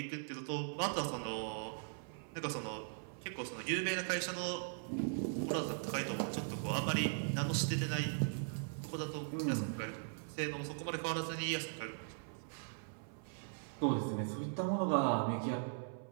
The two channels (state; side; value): silent; left; 51 dB below the other